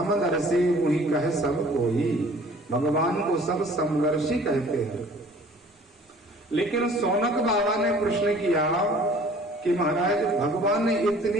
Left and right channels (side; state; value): both; normal; correlation 0.51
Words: वही कहे सब कोई, भगवान को सब समदर्शी कहते हैं। लेकिन सौनक बाबा ने प्रश्न किया कि महाराज, भगवान ने